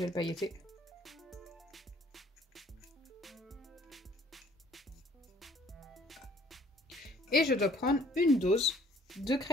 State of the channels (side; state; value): both; normal; correlation 0.58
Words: pailleté. Et je dois prendre une dose de